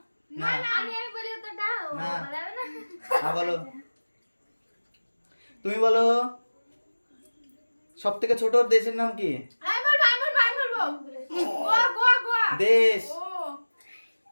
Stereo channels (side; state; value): both; inverted; correlation -1.00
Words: না আমি বলি উত্তরটা ও না। বলাবে না। হ্যাঁ বলো। তুমি বলো সব থেকে ছোট দেশের নাম কি? আমি বলবো গোয়া গোয়া গোয়া। দেশ। ও